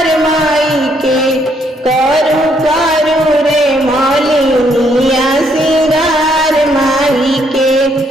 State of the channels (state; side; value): normal; both; correlation 0.71